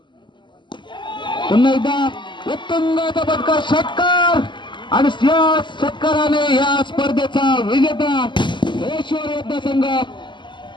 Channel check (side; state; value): right; late; 0.22 ms